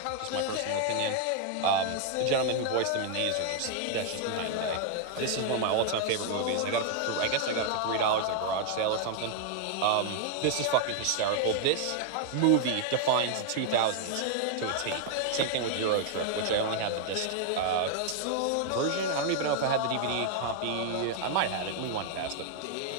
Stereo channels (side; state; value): both; different; correlation 0.00